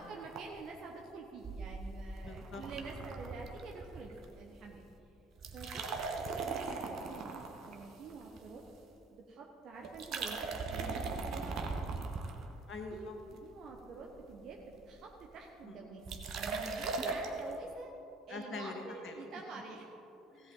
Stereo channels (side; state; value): left; quieter; 3.1 dB